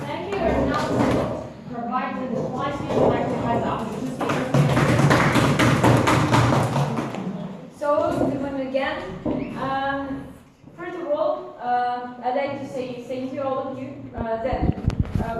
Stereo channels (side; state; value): both; identical; correlation 1.00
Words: Thank you. And now to provide the slides, we would like to have the opportunity to speak. So, good morning again. First of all, I'd like to say thank you all of you. That